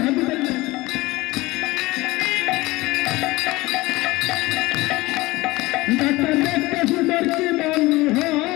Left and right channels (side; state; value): right; quieter; 20.4 dB